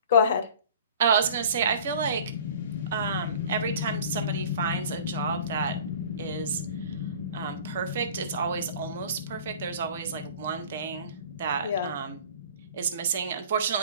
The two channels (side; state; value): both; inverted; correlation -0.44